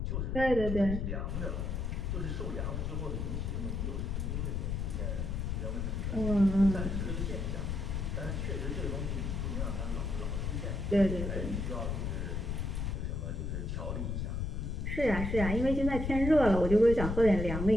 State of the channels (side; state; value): left; noise; rumble, 2 dB below the sound